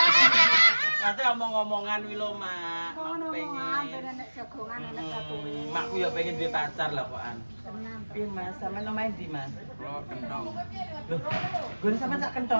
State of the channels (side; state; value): both; inverted; correlation -1.00